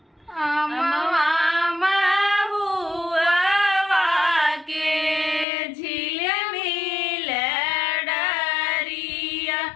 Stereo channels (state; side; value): drops out; right; at 5.5 s